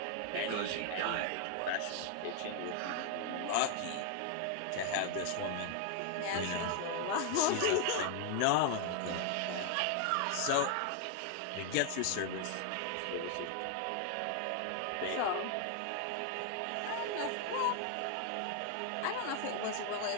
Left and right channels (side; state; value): both; different; correlation 0.00